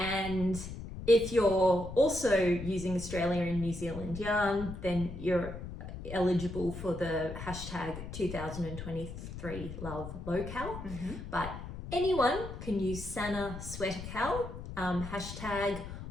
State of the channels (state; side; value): noise; left; rumble, 9 dB below the sound